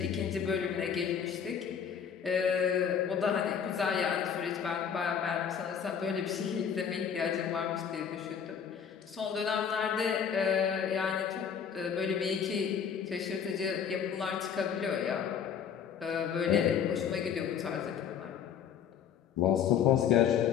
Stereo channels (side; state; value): right; quieter; 7.8 dB